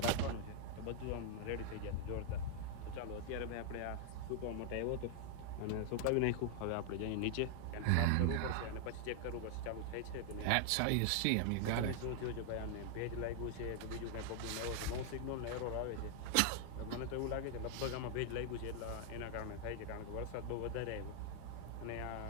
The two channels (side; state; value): both; different; correlation 0.00